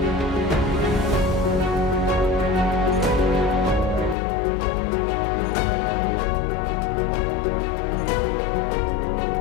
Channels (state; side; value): drops out; right; at 4.2 s